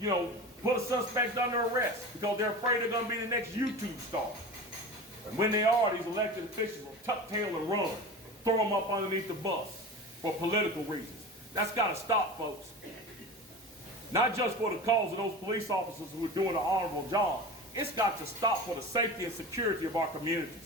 put a suspect under arrest because they're afraid they're going to be the next YouTube star. And when they are, these elected officials will tuck tail and run, throw them up underneath the bus for political reasons. That's got to stop, folks. Not just for the cause of those police officers who are doing an honorable job. It's got to stop for the safety and security of our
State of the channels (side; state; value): both; normal; correlation 0.32